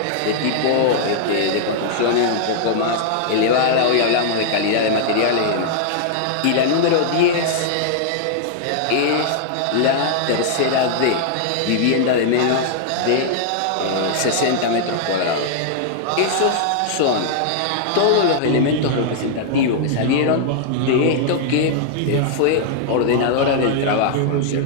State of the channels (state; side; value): different; both; correlation -0.01